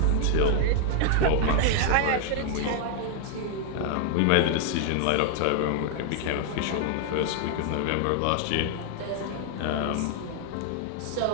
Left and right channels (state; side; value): different; both; correlation 0.00